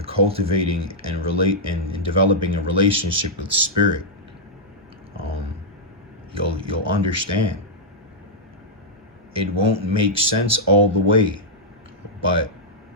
cultivating and developing a relationship with spirit, you'll understand. It won't make sense all the way, but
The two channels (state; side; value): normal; both; correlation -0.07